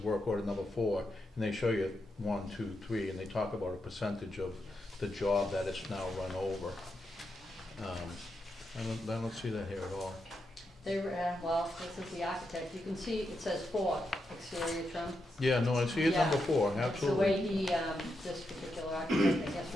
work order number 4, and they show you 1, 2, 3, and they talk about a percentage of the job that it's now run over. I don't see that here at all. They were, well, this is the architect, you can see it says 4 exterior trim. Yeah, no, I see it Yeah. number 4, That's the absolutely. way he, this particular architect, I guess,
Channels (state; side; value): normal; both; correlation 0.85